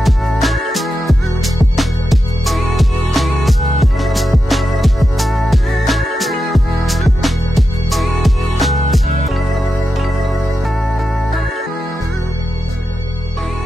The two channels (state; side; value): normal; both; correlation 0.89